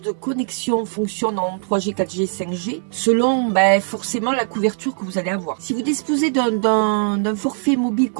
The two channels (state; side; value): silent; left; digital silence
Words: de connexion fonctionne en 3G, 4G, 5G selon forcément la couverture que vous allez avoir. Si vous disposez d'un forfait mobile